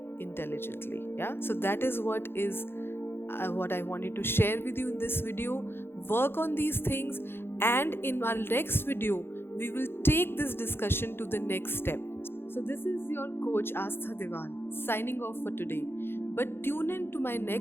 intelligently. Yeah, so that is what I wanted to share with you in this video. Work on these things, and in our next video, we will take this discussion to the next step. So, this is your coach Astha Devan signing off for today. But tune in to my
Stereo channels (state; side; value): late; right; 0.11 ms